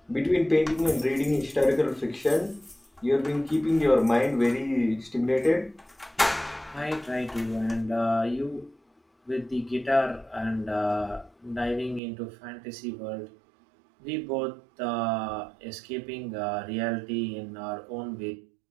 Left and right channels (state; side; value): drops out; left; at 12.0 s